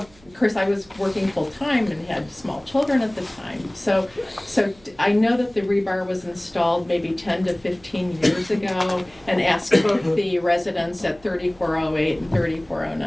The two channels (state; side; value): noise; right; hum, 27 dB below the sound